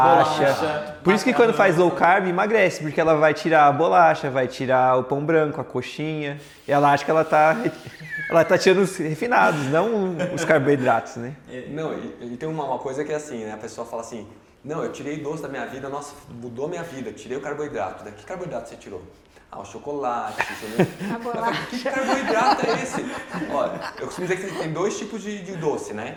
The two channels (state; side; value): identical; both; correlation 1.00